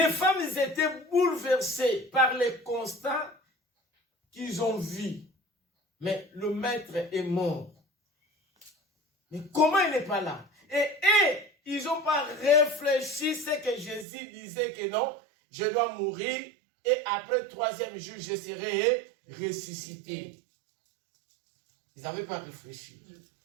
femmes étaient bouleversées par les constats qu'ils ont vus. Mais le maître est mort. Mais comment il n'est pas là? Et ils n'ont pas réfléchi ce que Jésus disait que non, je dois mourir et après 3e jour, je serai ressuscité. Ils n'avaient pas réfléchi.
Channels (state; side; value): drops out; left; at 14.1 s